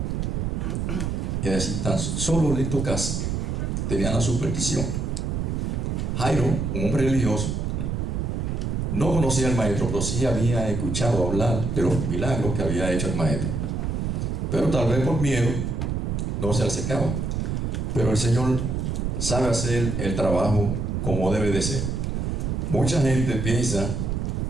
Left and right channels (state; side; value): noise; right; rumble, 1 dB below the sound